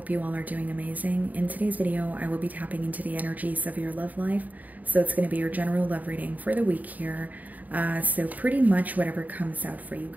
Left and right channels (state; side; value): late; left; 0.078 ms